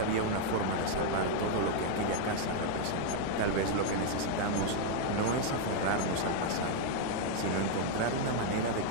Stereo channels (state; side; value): different; both; correlation 0.00